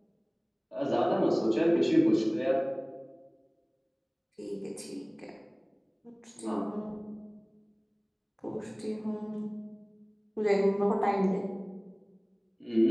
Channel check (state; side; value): identical; both; correlation 1.00